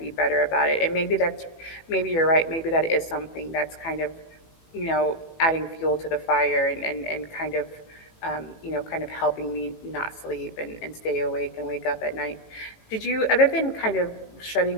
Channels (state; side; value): late; right; 18 ms